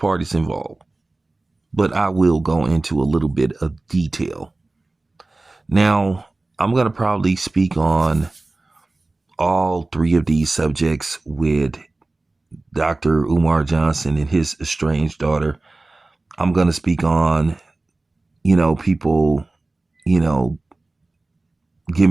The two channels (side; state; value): left; quieter; 3.1 dB